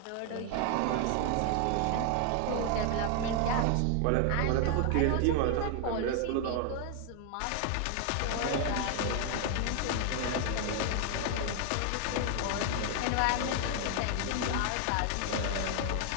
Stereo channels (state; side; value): different; both; correlation 0.00